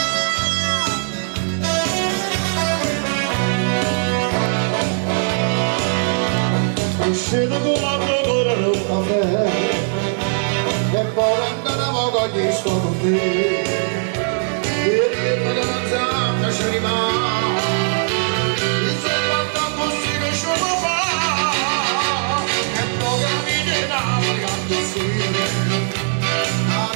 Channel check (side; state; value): left; silent; digital silence